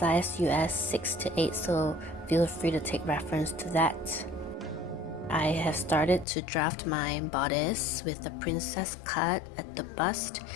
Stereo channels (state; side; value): drops out; right; at 6.2 s